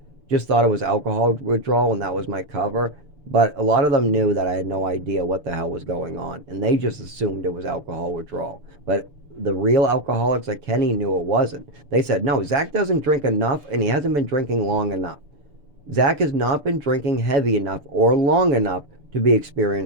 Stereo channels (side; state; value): left; late; 6.9 ms